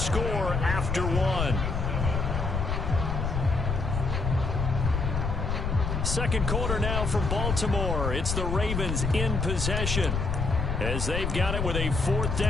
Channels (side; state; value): left; noise; rumble, 1 dB below the sound